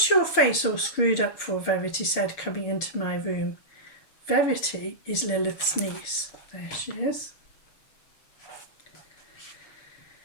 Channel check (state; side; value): late; right; 6.9 ms